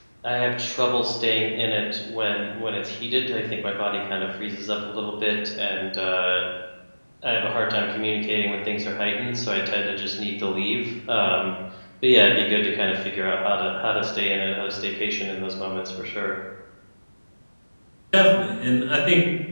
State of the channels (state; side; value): inverted; both; correlation -1.00